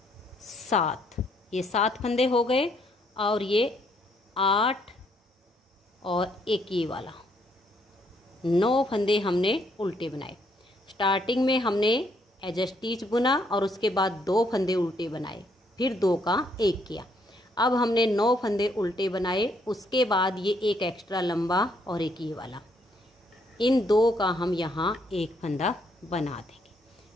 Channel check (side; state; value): both; normal; correlation 0.70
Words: 7, ये 7 फंदे हो गए और ये 8 और एक ये वाला। 9 फंदे हमने उल्टे बनाए। स्टार्टिंग में हमने एज स्टिच बुना और उसके बाद 2 फंदे उल्टे बनाए, फिर 2 का 1 किया। अब हमने 9 फंदे उल्टे बनाए, उसके बाद ये एक एक्स्ट्रा लंबा और एक ये वाला। इन 2 का हम यहाँ एक फंदा बना देंगे।